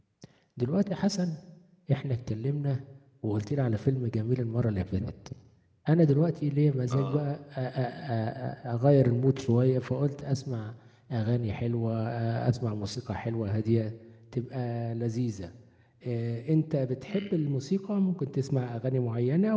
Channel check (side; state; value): both; identical; correlation 1.00